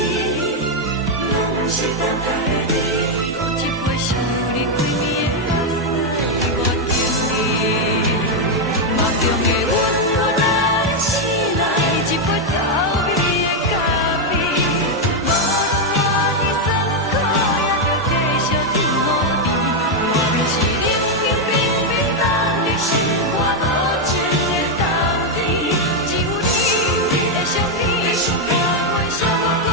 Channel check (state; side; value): normal; both; correlation 0.02